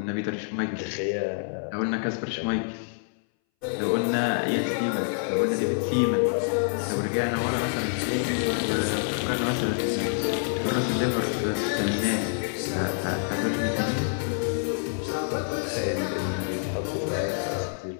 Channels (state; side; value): silent; right; 60 dB below the other